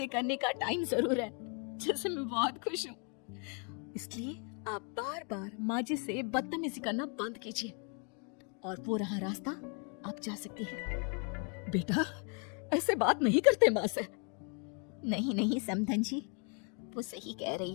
करने का टाइम जरूर है, जिससे मैं बहुत खुश हूँ। इसलिए आप बार बार माँ जी से बदतमीजी करना बंद कीजिए और वो रहा रास्ता, आप जा सकती हैं। बेटा, ऐसे बात नहीं करते माँ से। नहीं समधन जी, वो सही कह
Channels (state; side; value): quieter; right; 38.2 dB